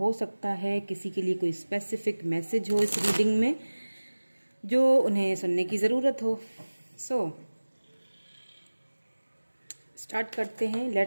सकता है किसी के लिए कोई स्पेसिफिक मैसेज हो इस रीडिंग में जो उन्हें सुनने की ज़रूरत हो। सो स्टार्ट करते हैं।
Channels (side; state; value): both; inverted; correlation -1.00